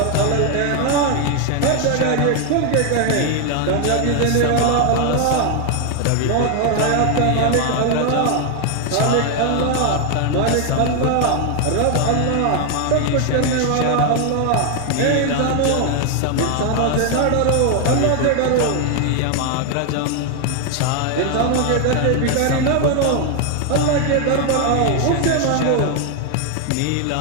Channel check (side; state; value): both; different; correlation 0.00